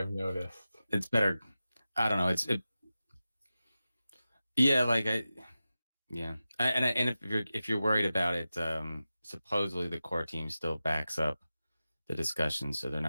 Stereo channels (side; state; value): both; inverted; correlation -0.94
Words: noticed. It's better. I don't know. Yeah, like and if you're worried about it, supposedly the core team still backs up the discussion, so they're